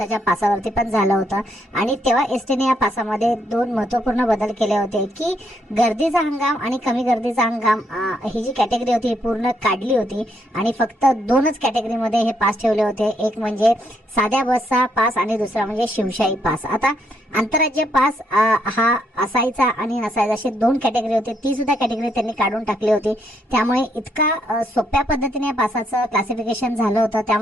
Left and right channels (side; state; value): both; normal; correlation 0.75